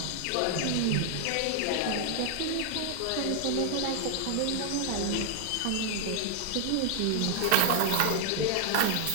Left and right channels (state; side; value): different; both; correlation 0.00